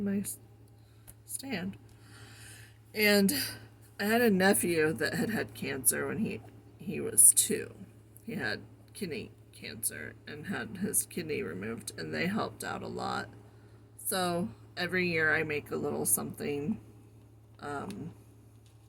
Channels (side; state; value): both; identical; correlation 1.00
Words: my stand. And I had a nephew that had cancer when he was 2. He had kidney cancer and had his kidney removed, and they helped out a lot. So every year I make a little something,